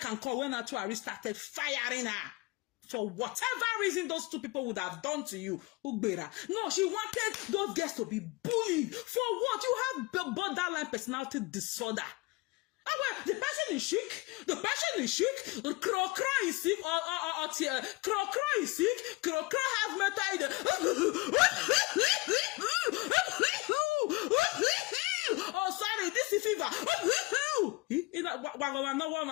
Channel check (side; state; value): right; quieter; 23.0 dB